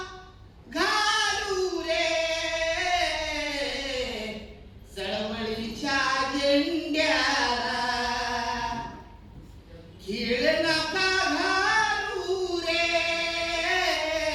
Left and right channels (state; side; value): identical; both; correlation 1.00